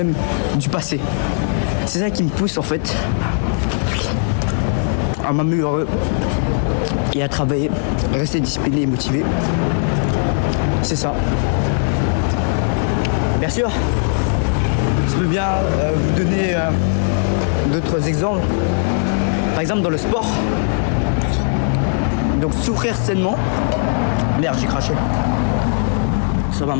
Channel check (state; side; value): silent; right; 56 dB below the other